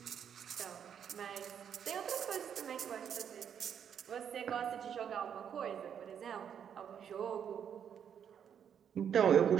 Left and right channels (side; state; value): left; quieter; 8.3 dB